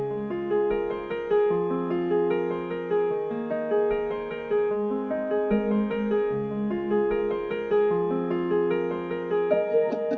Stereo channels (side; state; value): both; identical; correlation 1.00